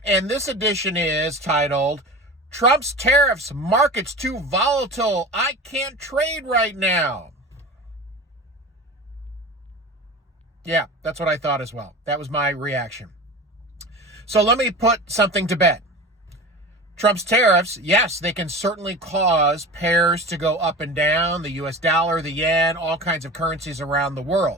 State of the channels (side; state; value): both; normal; correlation 0.33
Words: And this edition is titled, Trump's Tariffs, Markets Too Volatile, I Can't Trade Right Now. Yeah, that's what I thought as well. That was my reaction. So let me put something to bed. Trump's tariffs, yes, they can certainly cause pairs to go up and down, the US dollar, the yen, all kinds of currencies around the